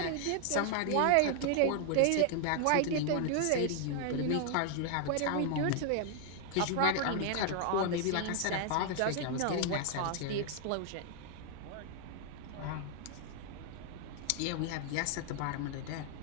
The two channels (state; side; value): different; both; correlation 0.00